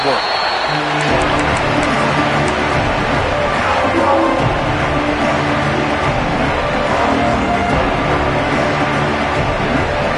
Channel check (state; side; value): identical; both; correlation 1.00